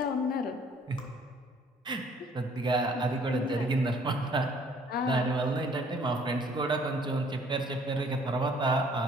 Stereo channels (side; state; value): both; normal; correlation 0.59